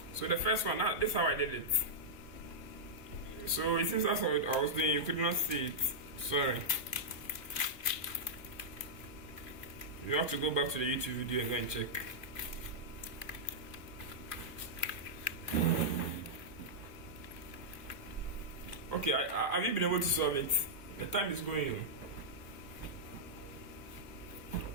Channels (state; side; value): late; right; 2.9 ms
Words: So the first one, this is how I did it. So it seems that's what I was doing. You could not see it. Sorry. You have to go back to the YouTube video and go and check. Okay, have you been able to solve it? The time is going.